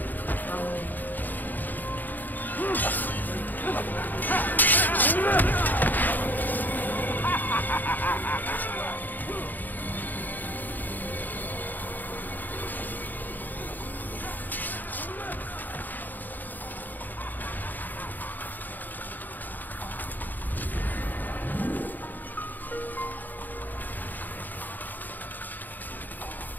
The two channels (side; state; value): right; late; 0.087 ms